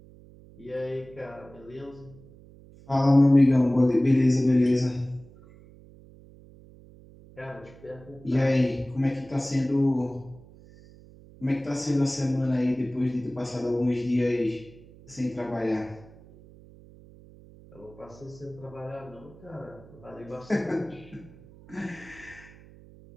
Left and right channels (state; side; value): noise; right; hum, 22 dB below the sound